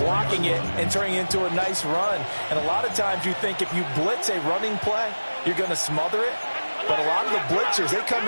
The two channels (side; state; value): both; inverted; correlation -1.00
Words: it and turning it into a nice run. And a lot of times you think if you blitz a running play, you're going to smother it. But a lot of the blitzers, they come